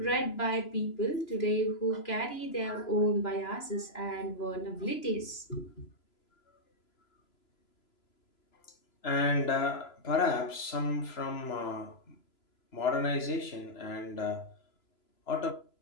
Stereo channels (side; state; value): right; late; 3.0 ms